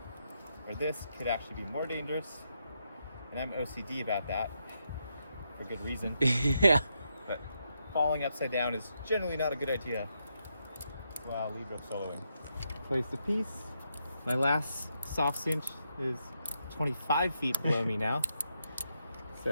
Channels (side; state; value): both; inverted; correlation -0.82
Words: Or this could actually be more dangerous. And I'm OCD about that, for good reason. Yeah. But falling upside down is generally not a good idea while lead rope soloing. Place the piece. My last soft cinch is 25 feet below me now.